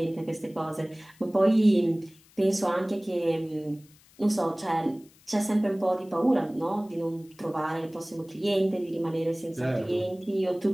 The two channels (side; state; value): left; noise; hiss, 28 dB below the sound